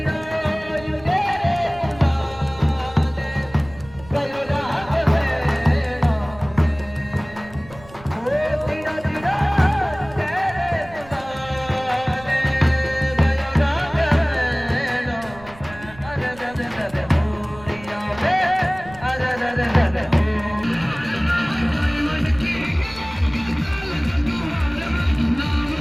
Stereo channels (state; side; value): noise; right; rumble, 20 dB below the sound